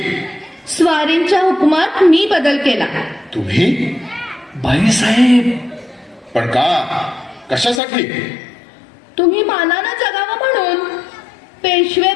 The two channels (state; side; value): drops out; right; at 7.8 s